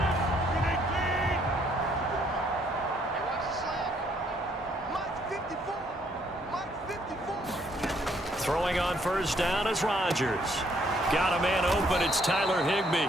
Throwing on first down is Rodgers. Got a man open. It's Tyler Higbee.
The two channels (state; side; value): normal; both; correlation 0.68